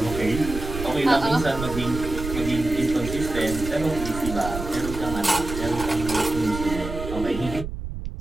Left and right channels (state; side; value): noise; right; rumble, 7 dB below the sound